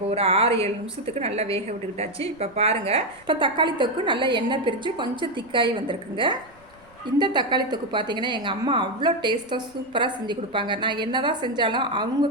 ஒரு 6-7 நிமிஷத்துக்கு நல்லா வேக விட்டுக்கிட்டாச்சு. இப்போ பாருங்கள், இப்போ தக்காளி தொக்கு நல்லா எண்ணெய் பிரித்து கொஞ்சம் திக்காகி வந்திருக்குங்க. இந்த தக்காளி தொக்கு பார்த்திங்கன்னா எங்கள் அம்மா அவ்வளோ டேஸ்ட்டாக சூப்பராக செஞ்சு கொடுப்பாங்க. நான் என்ன தான் செஞ்சாலும் அவங்க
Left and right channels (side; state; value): right; noise; rumble, 29 dB below the sound